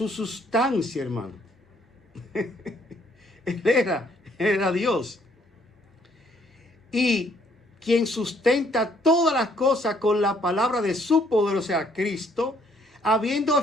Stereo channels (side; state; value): both; normal; correlation 0.66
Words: sustancia, hermano. Él era Dios. Y quien sustenta todas las cosas con la palabra de su poder, o sea, Cristo, habiendo